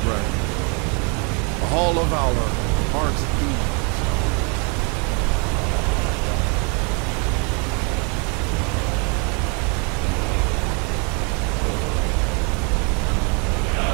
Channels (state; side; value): quieter; left; 34.4 dB